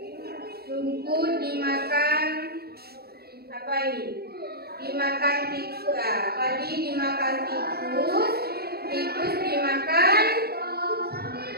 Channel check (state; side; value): late; left; 0.46 ms